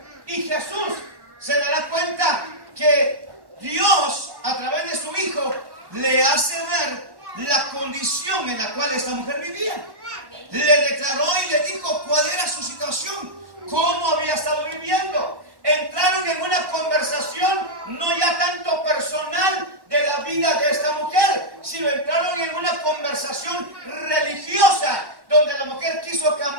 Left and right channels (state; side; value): late; left; 1.1 ms